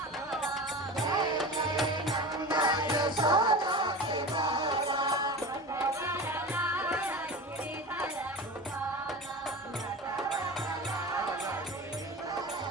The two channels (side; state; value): both; normal; correlation 0.31